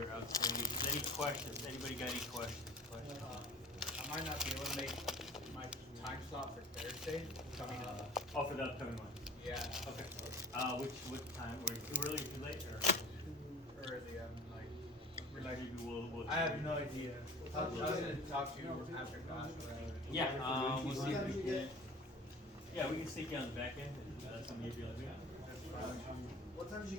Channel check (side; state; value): both; normal; correlation 0.41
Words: outstanding. Any questions? Anybody got any questions? I might not be able to make my time slot for Thursday coming up. Oh, for the upcoming one. Yeah, Okay. What time? Were you too early or too late? Or too early. maybe we'll. I have no idea. I was gonna talk to you after class or whatever. Yeah. We'll see if we can. Yeah, we can stick you on the back end. And that's when you'll be like, What time did you